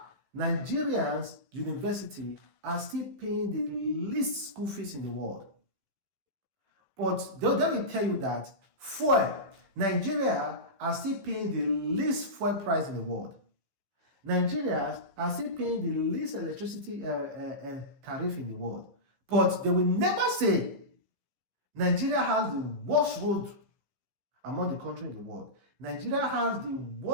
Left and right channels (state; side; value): late; left; 15 ms